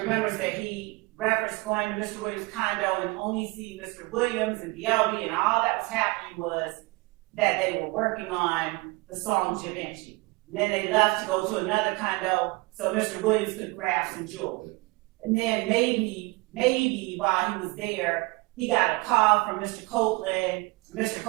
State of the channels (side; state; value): left; quieter; 25.4 dB